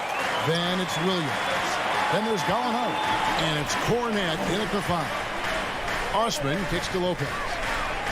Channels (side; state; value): both; identical; correlation 1.00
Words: Then it's Williams. Then there's Gallinari. And it's Cornette in at the 5. Osman kicks to Lopez.